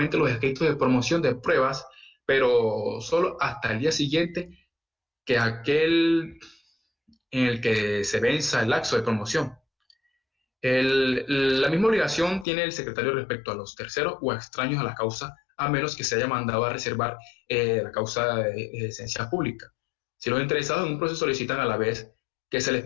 los escritos de promoción de pruebas, pero solo hasta el día siguiente que aquel en el que se venza el lapso de promoción. La misma obligación tiene el secretario respecto a los terceros o extraños a la causa, a menos que se haya mandado a reservar la causa de esencia pública. Si los interesados en un proceso solicitan a la vez que se les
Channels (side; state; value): right; drops out; at 12.5 s